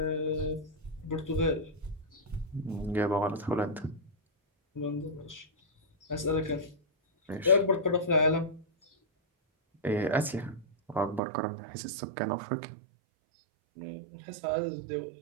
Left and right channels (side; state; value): left; drops out; at 11.2 s